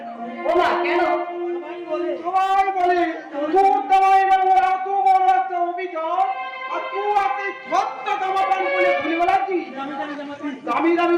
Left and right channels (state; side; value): identical; both; correlation 1.00